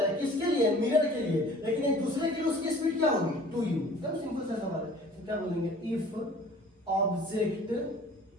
किसके लिए, मिरर के लिए, लेकिन एक दूसरे के लिए उसकी स्पीड क्या होगी, 2u। एकदम सिंपल सा सवाल है। तो क्या बोलेंगे, if object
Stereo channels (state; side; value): normal; both; correlation 0.49